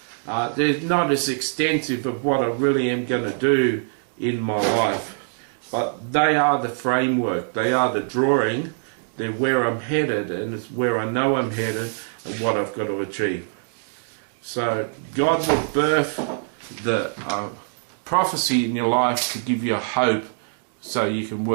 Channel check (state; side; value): silent; left; digital silence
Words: they're not as extensive of what I really am going to do in my life. But they are the framework, they are the drawing, they're where I'm headed, and it's where I know I'm headed and what I've got to achieve. So God will birth the prophecy in your life to give you hope so you can